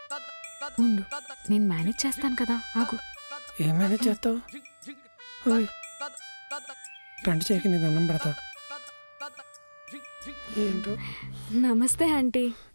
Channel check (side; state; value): both; inverted; correlation -1.00